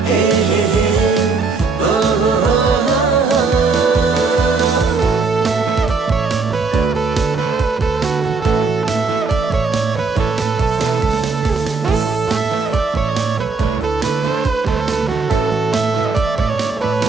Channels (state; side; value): quieter; left; 4.3 dB